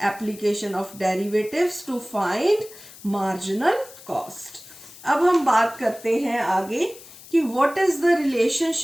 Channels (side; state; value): left; noise; hiss, 19 dB below the sound